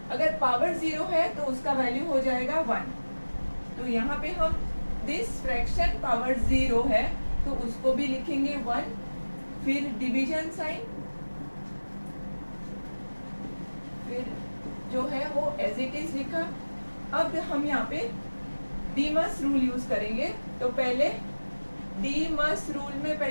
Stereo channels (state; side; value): inverted; both; correlation -1.00